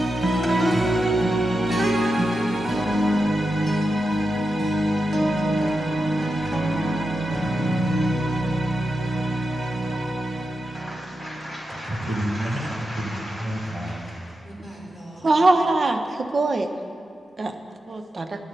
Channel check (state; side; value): normal; both; correlation 0.89